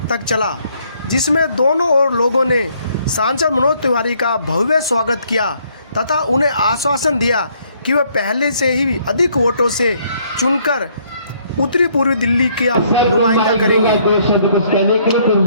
तक चला, जिसमें दोनों ओर लोगों ने सांसद मनोज तिवारी का भव्य स्वागत किया तथा उन्हें आश्वासन दिया कि वे पहले से ही अधिक वोटों से चुनकर उत्तरी पूर्वी दिल्ली का नुमाइंदा करेंगे।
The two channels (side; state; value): both; inverted; correlation -0.67